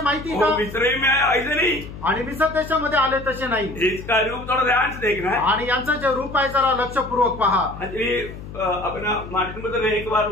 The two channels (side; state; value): left; noise; hum, 13 dB below the sound